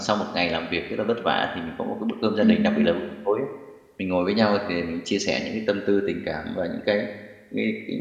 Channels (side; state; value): both; identical; correlation 1.00